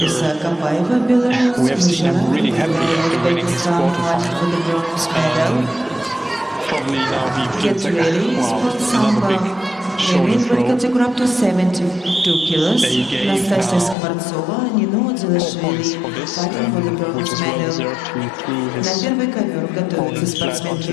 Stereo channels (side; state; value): right; drops out; at 14.0 s